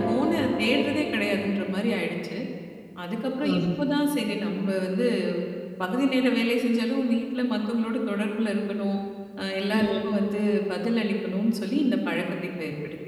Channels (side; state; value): both; identical; correlation 1.00